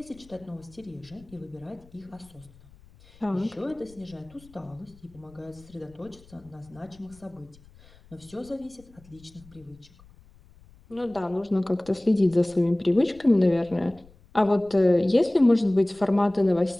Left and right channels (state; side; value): noise; left; rumble, 25 dB below the sound